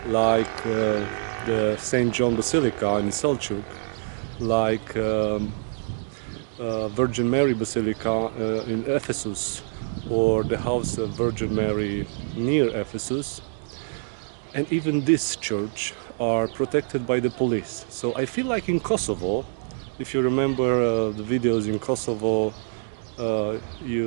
like the St. John Basilica in Selçuk, like Virgin Mary Basilica in Ephesus, or the House of Virgin Mary near Ephesus, and even this church are protected by the police. So I feel like in Kosovo, if you remember the videos in Kosovo,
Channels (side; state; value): left; silent; 61 dB below the other